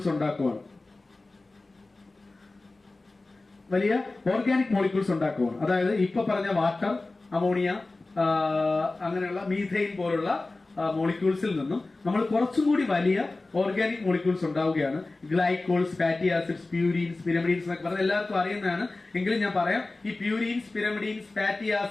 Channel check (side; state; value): right; quieter; 3.2 dB